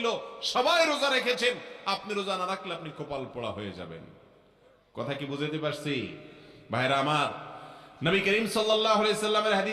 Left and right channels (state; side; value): identical; both; correlation 1.00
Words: সবাই রোজা রেখেছেন। আপনি রোজা না রাখলে আপনি কপাল পোড়া হয়ে যাবেন। কথা কি বুঝতে পারছি? ভাইরা আমার, নবী করিম সাল্লাল্লাহু আলাইহি সাল্লামের